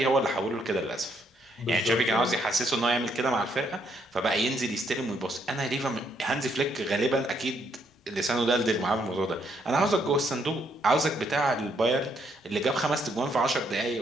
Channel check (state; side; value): normal; both; correlation 0.73